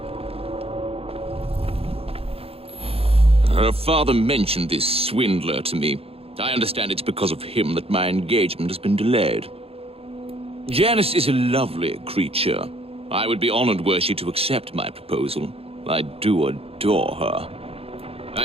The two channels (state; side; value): late; left; 0.28 ms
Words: Her father mentioned this swindler to me. I understand it's because of him that my engagement has been delayed. Janice is a lovely creature. I would be honored were she to accept my proposal. I do adore her. I